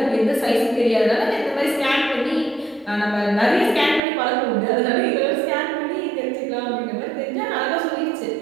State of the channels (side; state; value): left; drops out; at 4.0 s